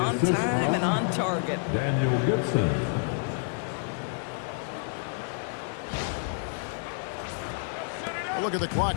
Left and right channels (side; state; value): right; silent; digital silence